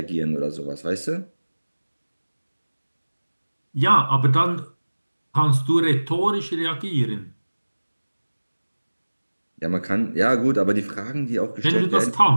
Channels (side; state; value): both; inverted; correlation -1.00